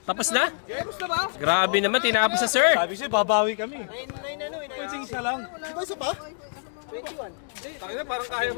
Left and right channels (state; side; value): silent; right; digital silence